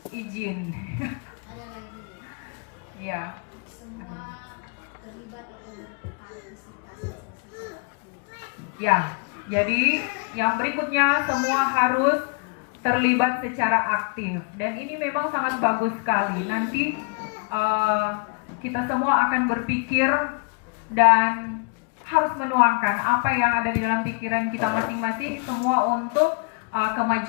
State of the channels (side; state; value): right; quieter; 36.6 dB